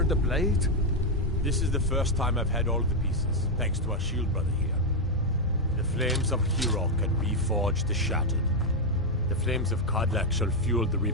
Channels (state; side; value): normal; both; correlation 0.02